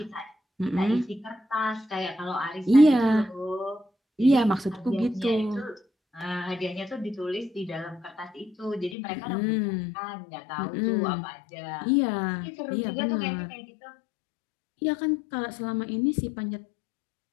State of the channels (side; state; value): right; drops out; at 9.0 s